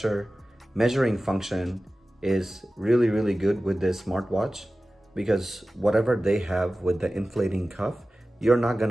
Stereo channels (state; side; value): normal; both; correlation 0.96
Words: measuring function is really good with this smartwatch, because whatever they have with the inflating cuff, you're not